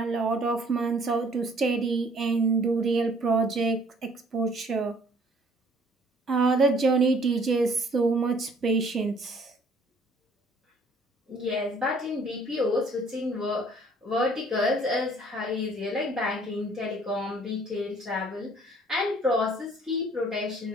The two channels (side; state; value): both; normal; correlation 0.58